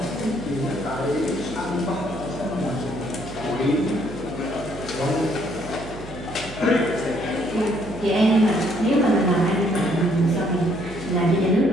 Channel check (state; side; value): noise; right; hum, 14 dB below the sound